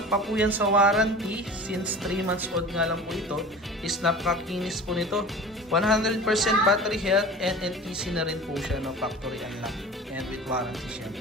pa po yan sa warranty since 3 months old nga lang po ito. Is napakakinis po nito. 100% battery health and NTC na rin po siya, no? Factory unlock and with warranty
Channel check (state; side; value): normal; both; correlation 0.37